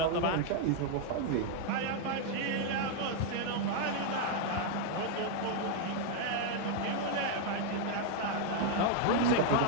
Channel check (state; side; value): different; both; correlation 0.00